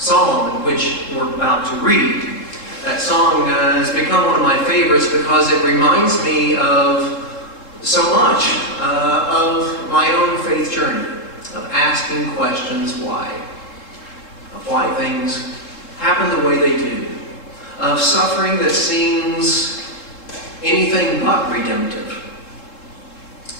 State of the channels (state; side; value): late; right; 3.7 ms